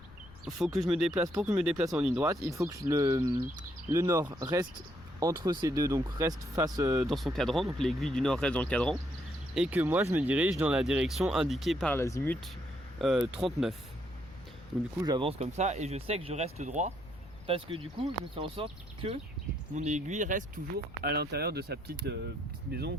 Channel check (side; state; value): left; noise; rumble, 21 dB below the sound